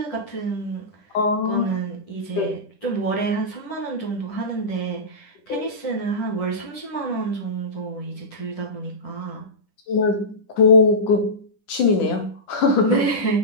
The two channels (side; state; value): right; late; 10 ms